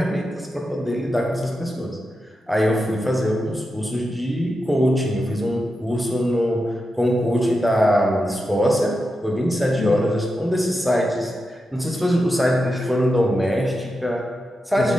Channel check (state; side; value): normal; both; correlation 0.89